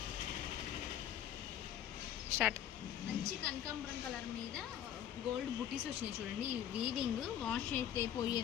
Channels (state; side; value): quieter; right; 10.5 dB